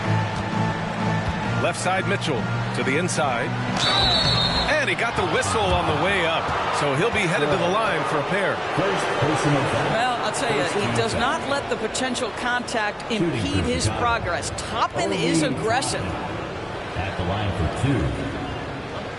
Left side Mitchell to the inside. And he got the whistle on the way up. So he'll be headed to the line for a pair. Well, I'll tell you, he does not let the potential contact impede his progress. Toppin is aggressive. At the line for 2.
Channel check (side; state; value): both; identical; correlation 1.00